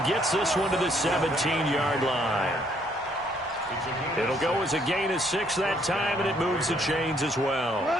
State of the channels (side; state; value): both; normal; correlation 0.68